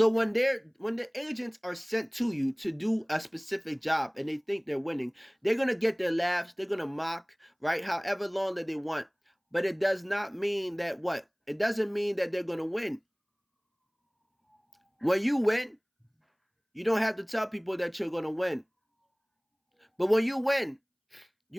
when the agents are sent to you to do a specific job and they think they're winning, they're gonna get their laughs, they're gonna mock, right? However long that they want. But it does not mean that what? It doesn't mean that they're gonna win. When you win, you don't have to tell people that you're gonna win. But when you win,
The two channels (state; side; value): identical; both; correlation 1.00